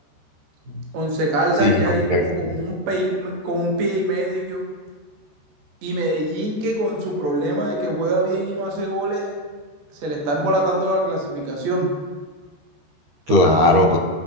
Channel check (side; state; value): left; late; 13 ms